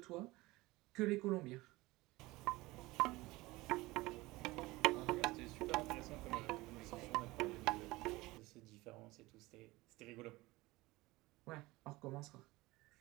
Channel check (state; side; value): quieter; left; 20.6 dB